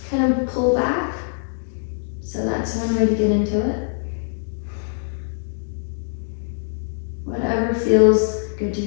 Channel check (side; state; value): right; silent; digital silence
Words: kind of pull back. So that's one way to get into it. Whatever feels good to